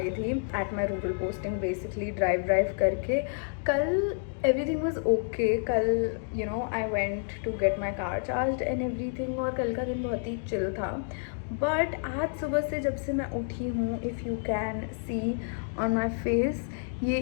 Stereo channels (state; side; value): silent; right; digital silence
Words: थी at my rural posting, basically drive करके। कल एवरीथिंग वॉज ओके। कल you know I went to get my car charge and everything, और कल का दिन बहुत ही चिल था। बट आज सुबह से जब से मैं उठी हूँ, if you can see on my face, ये